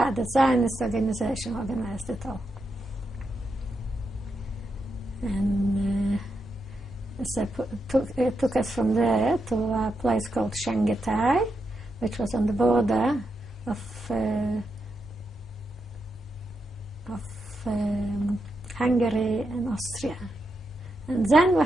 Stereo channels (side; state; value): both; normal; correlation 0.85